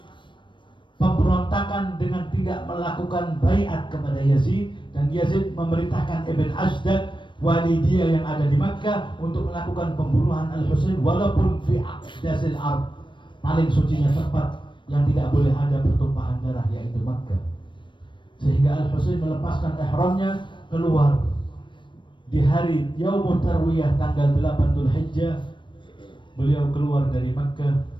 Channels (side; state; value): right; late; 0.23 ms